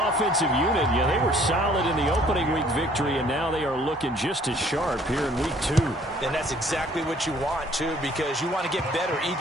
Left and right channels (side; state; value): both; normal; correlation 0.58